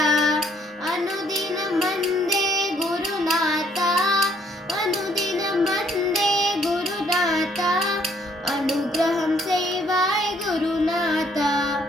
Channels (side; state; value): both; normal; correlation 0.65